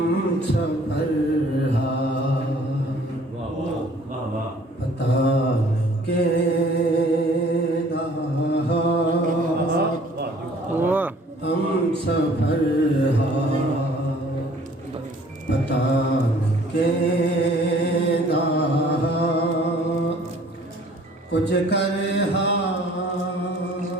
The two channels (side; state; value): both; normal; correlation 0.55